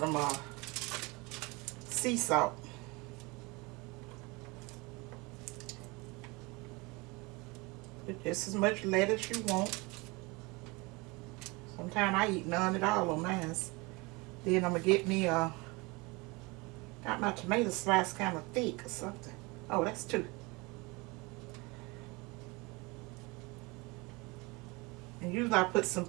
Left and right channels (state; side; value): quieter; left; 25.7 dB